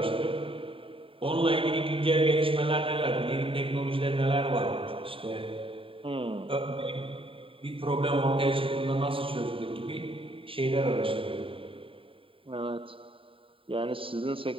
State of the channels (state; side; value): late; left; 0.26 ms